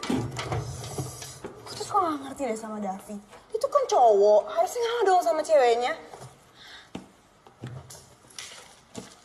Aku tuh kok gak ngerti deh sama Davi. Itu kan cowok, harusnya ngalah dong sama ceweknya.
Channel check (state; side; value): identical; both; correlation 1.00